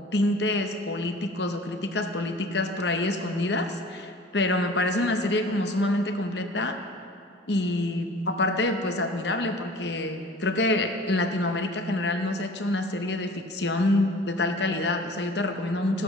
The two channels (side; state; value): both; normal; correlation 0.45